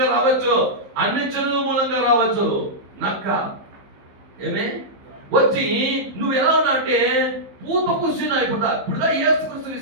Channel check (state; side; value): late; left; 15 ms